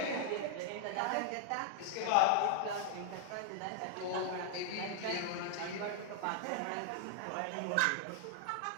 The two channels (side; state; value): both; different; correlation -0.01